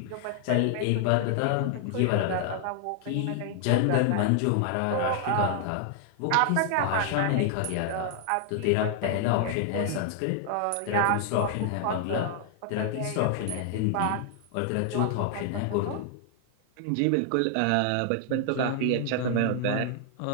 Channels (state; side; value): different; both; correlation 0.00